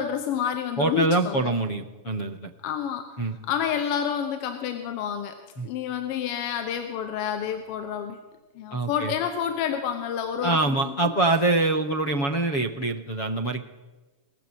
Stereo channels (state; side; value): late; right; 7.2 ms